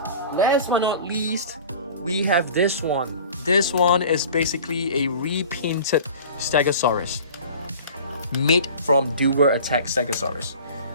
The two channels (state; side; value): inverted; both; correlation -0.42